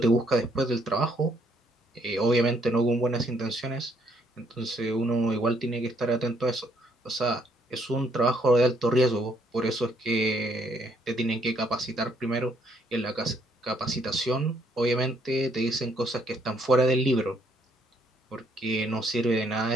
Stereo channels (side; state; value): both; normal; correlation 0.69